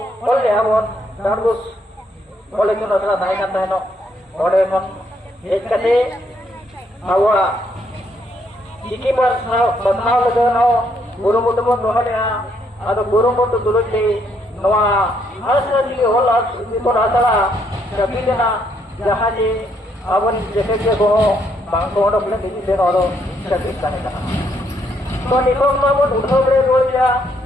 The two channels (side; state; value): both; normal; correlation 0.72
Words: ऑल के हमन दारबुस ऑल इतुन आसड़ा थाई का तहनो ओडे मन हेज कते आवा चिकी पर बदनाव लगनो गुरुमुट बन रोहलिया आदो गुरुमुट दुलुटी नोआ हांसली ऑल इतुन आसड़ा कबिलेना जहाँ जे अबन जेके के को बांग को ओडो प्ले दिजी से ओडो सकित ताने कना तो नितों नोबन उठो बरे रोया